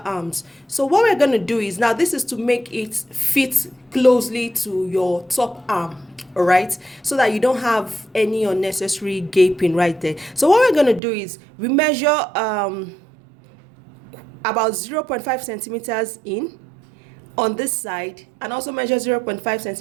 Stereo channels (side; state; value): left; drops out; at 11.0 s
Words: So what we're going to do is, now this is to make it fit closely to your top arm, all right, so that you don't have any unnecessary gaping right there. So what we're going to do is we measure about 0.5 centimeters in on this side, and also measure 0.5